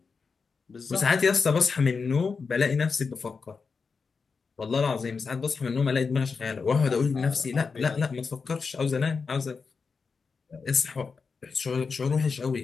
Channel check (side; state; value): right; quieter; 5.0 dB